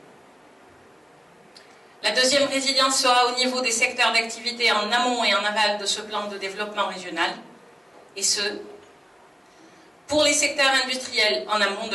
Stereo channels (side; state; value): both; normal; correlation 0.98